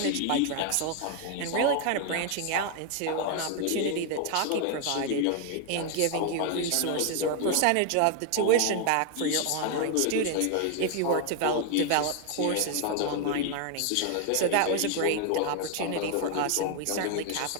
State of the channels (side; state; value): both; different; correlation 0.00